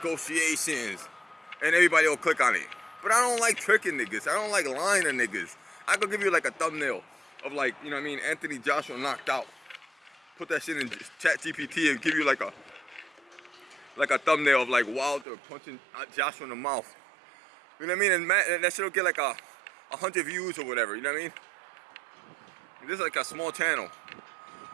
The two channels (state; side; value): drops out; left; at 15.2 s